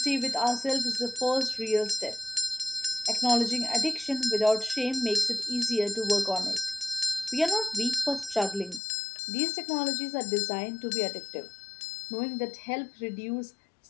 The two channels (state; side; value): drops out; right; at 8.8 s